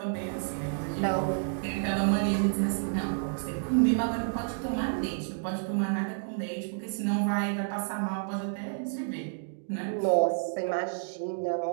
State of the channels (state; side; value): silent; left; digital silence